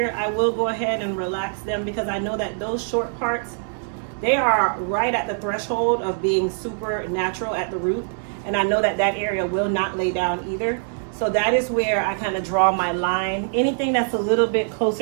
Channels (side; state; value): left; silent; digital silence